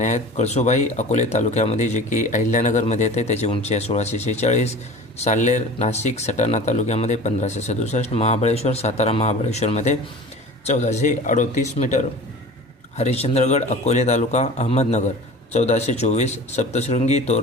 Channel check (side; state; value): both; normal; correlation 0.38